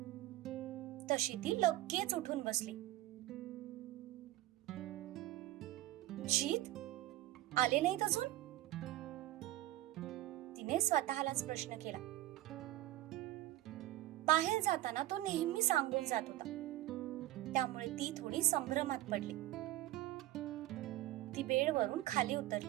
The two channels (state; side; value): quieter; left; 15.5 dB